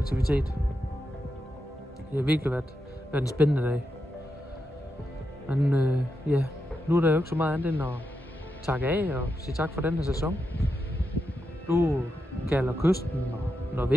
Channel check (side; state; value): both; normal; correlation 0.86